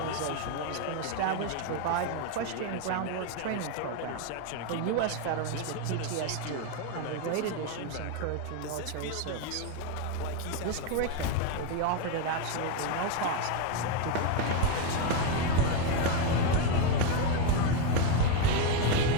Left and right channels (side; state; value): both; different; correlation 0.02